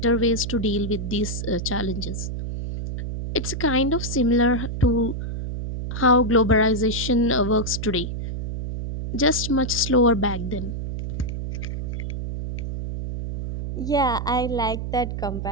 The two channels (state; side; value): noise; right; hum, 5 dB below the sound